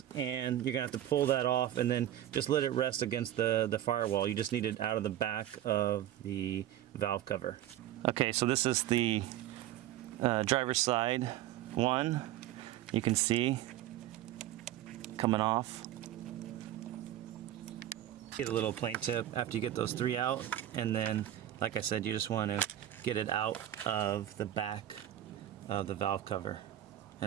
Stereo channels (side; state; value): left; quieter; 12.5 dB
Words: and you're gonna have to pull that off and then just let it rest against the firewall. You just need it out of the back of the valve cover. Okay, so this is the driver's side one. You can see coming off. Get a little plain tip after you get those 3 out, and then, like I said, you just want to get it out of the back of the valve cover,